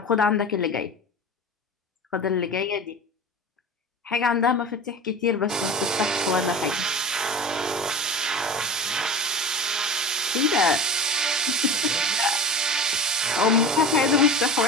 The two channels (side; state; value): both; normal; correlation 0.32